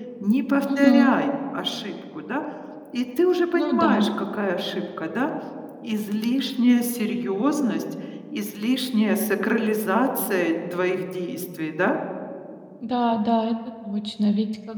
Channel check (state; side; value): identical; both; correlation 1.00